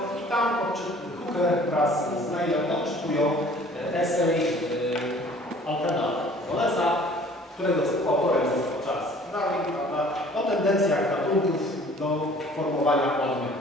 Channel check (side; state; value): both; normal; correlation 0.52